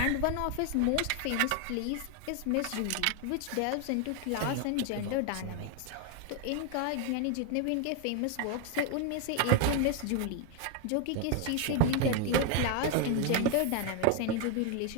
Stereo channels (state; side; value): different; both; correlation 0.01